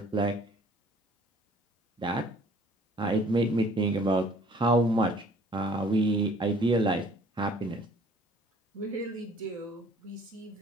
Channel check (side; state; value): both; normal; correlation 0.55